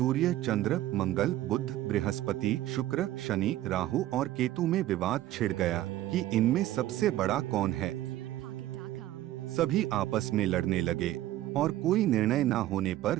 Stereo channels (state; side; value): quieter; left; 14.4 dB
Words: चंद्र, मंगल, बुध, बृहस्पति, शुक्र, शनि, राहु और केतु में विवाद छिड़ गया कि इनमें सबसे बड़ा कौन है। सभी आपस में लड़ने लगे और कोई निर्णय न होने पर